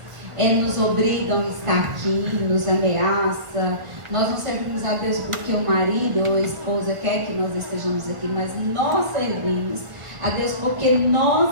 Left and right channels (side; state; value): left; late; 1.4 ms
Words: nos obrigam a estar aqui, nos ameaçam. Nós não servimos a Deus porque o marido ou a esposa quer que nós estejamos aqui, mas nós servimos a Deus porque